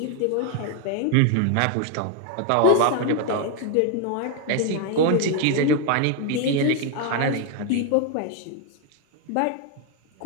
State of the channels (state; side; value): different; both; correlation 0.00